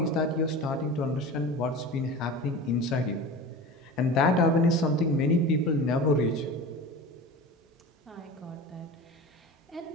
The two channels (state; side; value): normal; both; correlation 0.33